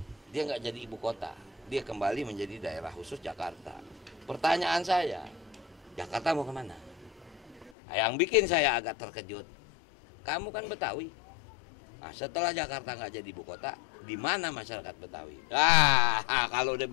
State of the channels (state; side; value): drops out; right; at 7.8 s